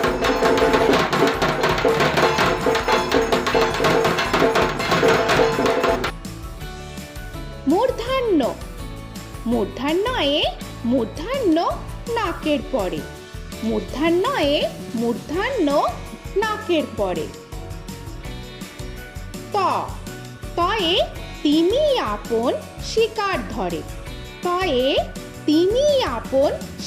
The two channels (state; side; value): identical; both; correlation 1.00